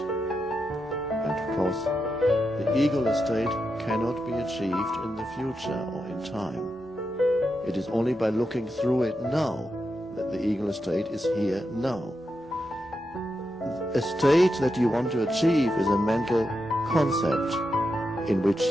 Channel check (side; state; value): both; normal; correlation 0.86